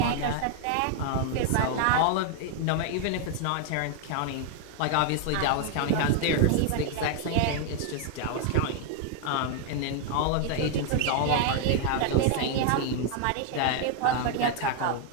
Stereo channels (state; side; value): different; both; correlation 0.00